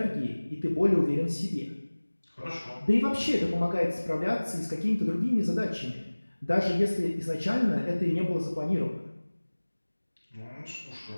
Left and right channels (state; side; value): inverted; both; correlation -1.00